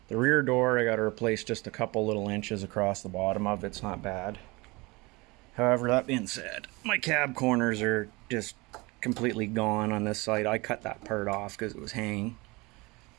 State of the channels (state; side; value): quieter; left; 24.4 dB